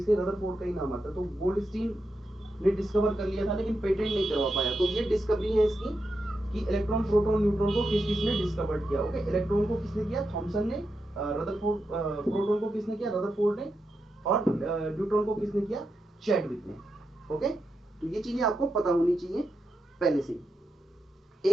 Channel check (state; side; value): normal; both; correlation 0.86